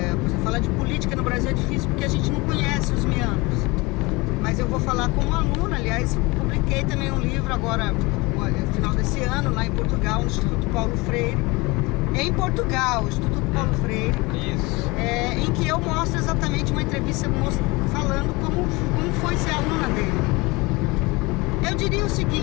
exemplo, falar de política no Brasil é difícil porque a gente não conhece os meandros. Mas eu vou falar como aluna, aliás, publiquei também um livro agora, no final desse ano, lá em Portugal, no Instituto Paulo Freire. Em Portugal, Instituto Paulo Freire. Isso. Em que eu mostro exatamente uma entrevista falando como foi ser aluna dele. Eu diria o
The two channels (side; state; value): right; quieter; 24.1 dB